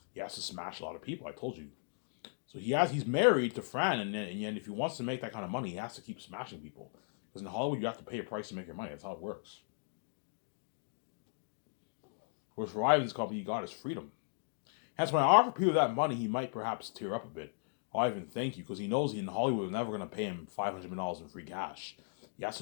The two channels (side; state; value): right; silent; digital silence